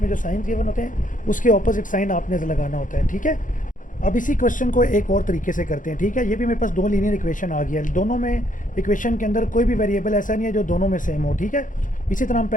जो साइन गिवन होते हैं उसके ऑपोजिट साइन आपने लगाना होता है, ठीक है। अब इसी क्वेश्चन को एक और तरीके से करते हैं, ठीक है। ये भी मेरे पास 2 लीनियर इक्वेशन आ गया है, दोनों में इक्वेशन के अंदर कोई भी वेरिएबल ऐसा नहीं है जो दोनों में सेम हो, ठीक है। इसी तरह हम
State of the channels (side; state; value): right; late; 0.38 ms